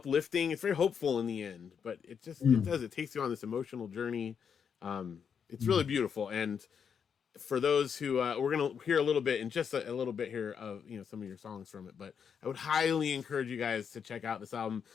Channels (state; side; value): quieter; right; 7.1 dB